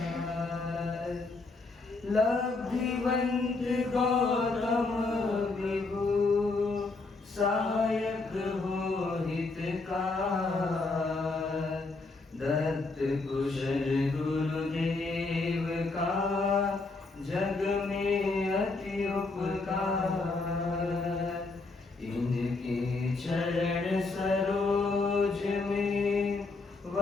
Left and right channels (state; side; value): quieter; right; 3.6 dB